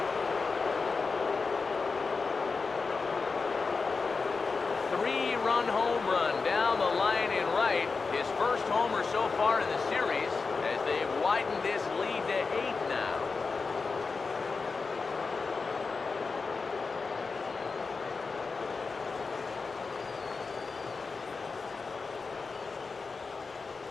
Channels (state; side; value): quieter; right; 4.5 dB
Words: Three-run home run down the line in right. His first homer so far in the series as they've widened this lead to 8 now.